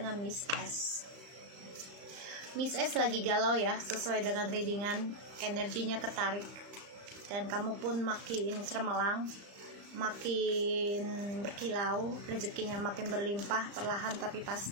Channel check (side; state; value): left; late; 35 ms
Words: Miss S. Miss S lagi galau ya, sesuai dengan readingan, energinya ketarik, dan kamu pun makin cermelang, makin berkilau, rezekinya makin berlimpah, perlahan tapi